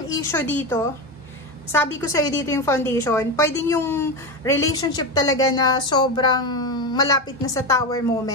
issue dito, sabi ko sa'yo dito yung foundation, pwedeng yung relationship talaga na sobrang malapit na sa tower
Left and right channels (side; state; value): both; normal; correlation 0.17